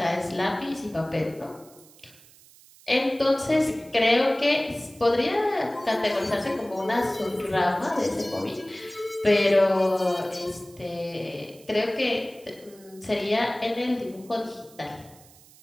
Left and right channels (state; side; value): noise; right; hiss, 25 dB below the sound